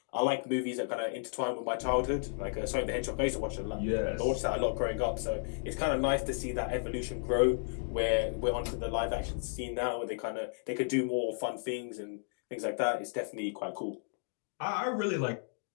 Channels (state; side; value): silent; right; digital silence